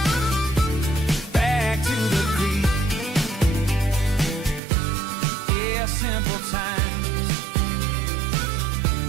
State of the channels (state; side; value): drops out; left; at 4.6 s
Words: back to the creek. Yeah, simple times.